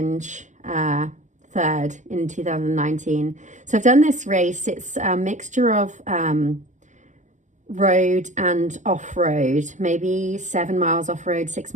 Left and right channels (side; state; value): left; late; 0.35 ms